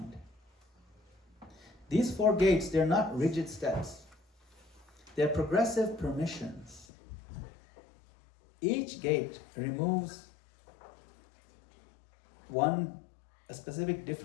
These 4 gates, they're not rigid steps. They're progressive permissions. Each gate removes a specific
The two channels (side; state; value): right; drops out; at 6.9 s